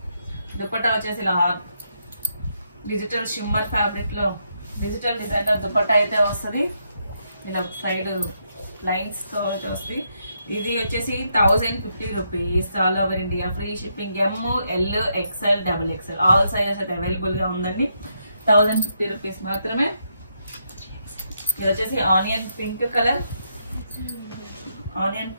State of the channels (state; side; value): inverted; both; correlation -0.79